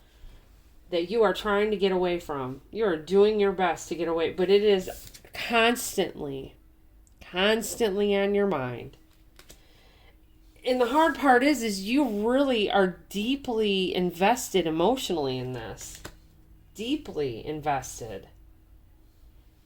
that you are trying to get away from. You are doing your best to get away, but it is constantly on your mind. And the hard part is you really are deeply invested emotionally in this. Deeply invested.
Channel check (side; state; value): both; identical; correlation 1.00